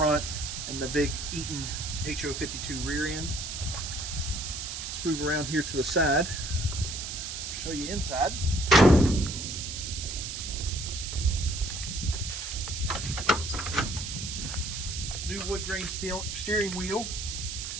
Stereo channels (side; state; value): right; noise; hiss, 5 dB below the sound